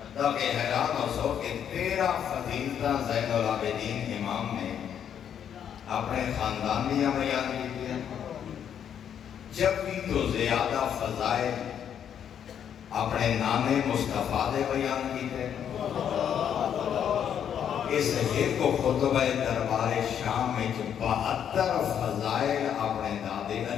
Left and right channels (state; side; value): quieter; right; 8.8 dB